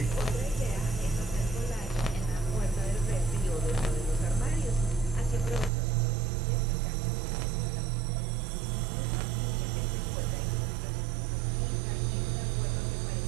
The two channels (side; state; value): left; drops out; at 5.7 s